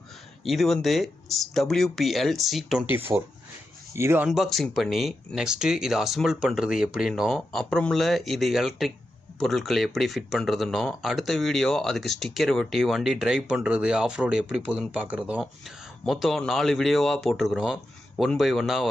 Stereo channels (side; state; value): both; normal; correlation 0.89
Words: இது வந்து WPL C24. இது அன்பாக்சிங் பண்ணி நெக்ஸ்ட்டு இதை அசம்பிள் பண்ணுறது எப்படின்னோ, அப்புறமில்ல இது எலக்ட்ரிக் பொருட்களை எப்படி ஃபிட் பண்ணுறதுன்னோ, அடுத்த வீடியோ அதுக்கு ஸ்டிக்கர் ஒட்டி வண்டி ட்ரைவ் பண்ணுறது ஆஃப் ரோடு எப்படி போகுதுன்னு பார்க்குறதும், மொத்தம் 4 வீடியோவாக போட்டிருக்கிறோம். 1 by 1